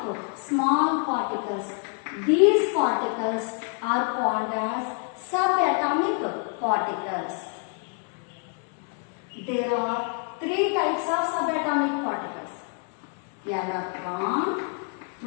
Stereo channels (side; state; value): right; quieter; 38.5 dB